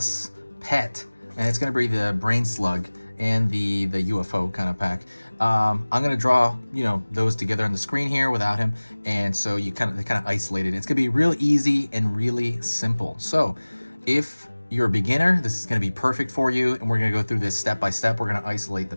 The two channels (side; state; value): both; inverted; correlation -1.00